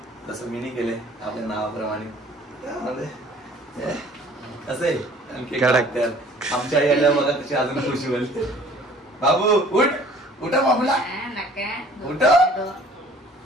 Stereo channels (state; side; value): normal; both; correlation 0.52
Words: जसं मीनी केले आपल्या नावाप्रमाणे. असे आमच्या आई आल्या बघा कशी अजून खुशी होईल. बाबू उठ, उठा बाबूला, उठ.